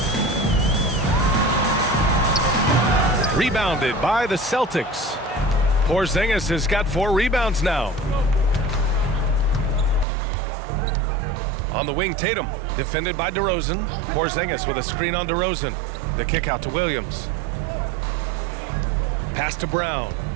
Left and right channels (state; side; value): drops out; left; at 10.1 s